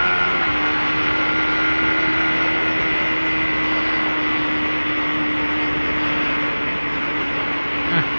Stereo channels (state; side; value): inverted; both; correlation -1.00